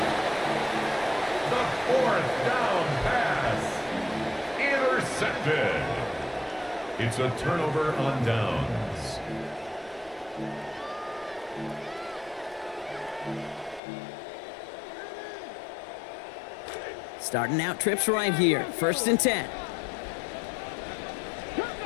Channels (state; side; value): drops out; right; at 13.8 s